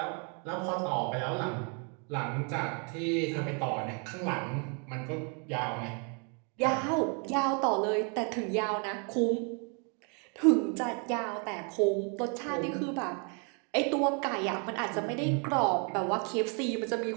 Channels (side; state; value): left; quieter; 36.8 dB